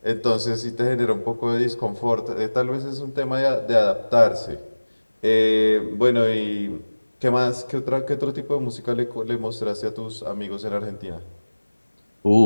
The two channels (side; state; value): both; inverted; correlation -1.00